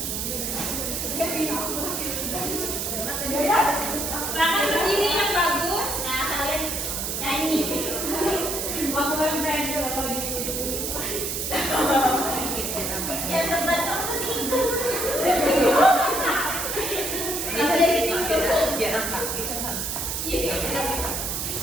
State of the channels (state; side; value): noise; right; hiss, 2 dB below the sound